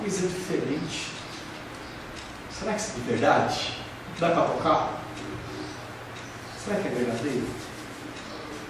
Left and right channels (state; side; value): identical; both; correlation 1.00